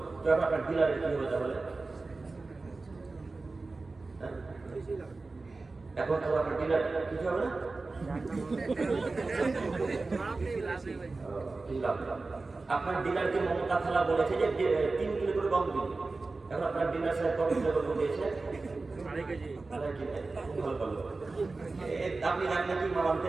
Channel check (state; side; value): quieter; left; 3.6 dB